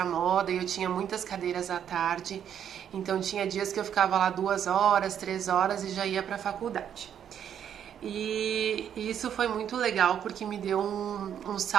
moda e eu tinha muitas cadeiras à tarde. Então tinha dias que eu ficava lá 2 horas, 3 horas e já ia para a faculdade. E isso foi muito legal porque me deu um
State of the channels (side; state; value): left; quieter; 9.1 dB